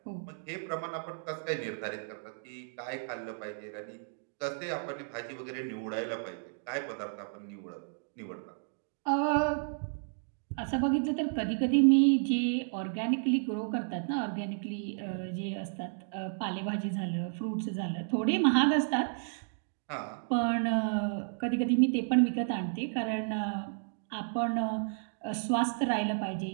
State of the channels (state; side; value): silent; left; digital silence